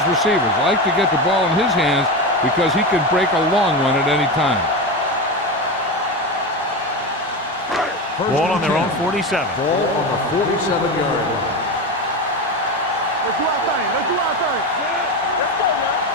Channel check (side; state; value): both; normal; correlation 0.20